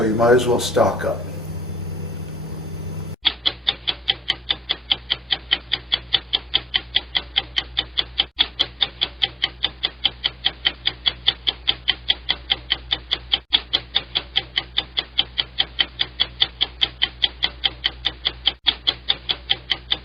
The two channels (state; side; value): normal; both; correlation 0.84